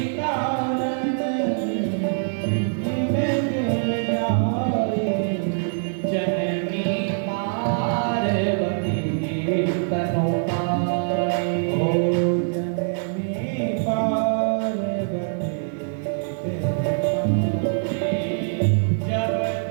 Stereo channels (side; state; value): left; silent; digital silence